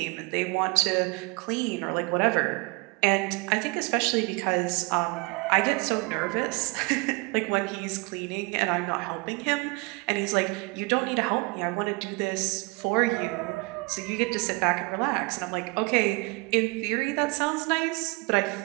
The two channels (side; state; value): left; quieter; 28.5 dB